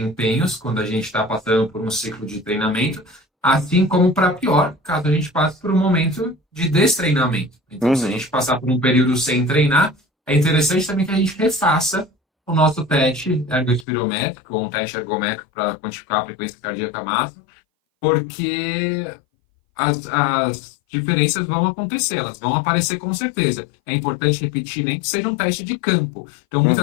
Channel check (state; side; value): drops out; right; at 13.9 s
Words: quando a gente está passando por um ciclo de treinamento, assim como para pior, caso a gente passe por um momento de destreinamento. Então, se a Uhum, gente passar por um período sem treinar, é interessante também que a gente refaça o nosso teste ergospirométrico, ou um teste ergométrico para quantificar a frequência cardíaca máxima, porque as diferenças vão acontecer, elas vão aparecer com certeza. É importante repetir, nem que seja um teste de campo. Então,